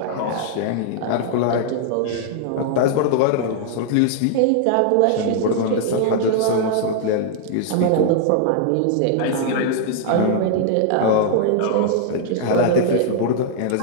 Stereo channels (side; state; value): both; different; correlation -0.01